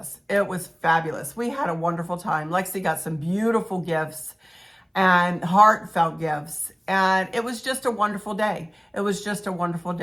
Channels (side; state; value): both; identical; correlation 1.00